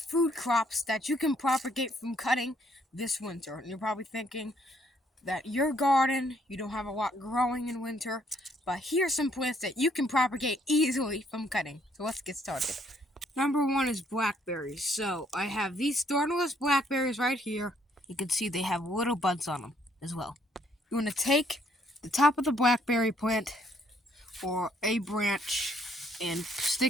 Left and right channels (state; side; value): normal; both; correlation 0.67